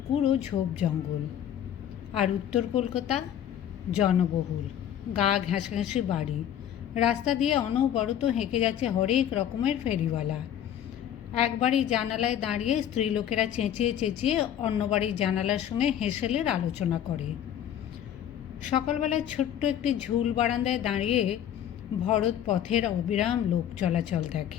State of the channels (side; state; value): right; quieter; 10.3 dB